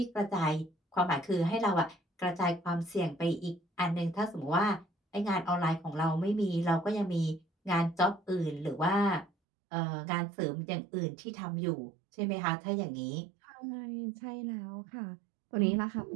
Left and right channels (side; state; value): left; drops out; at 9.3 s